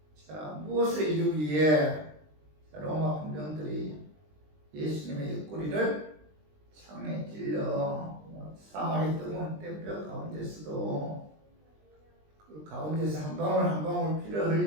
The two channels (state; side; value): late; left; 20 ms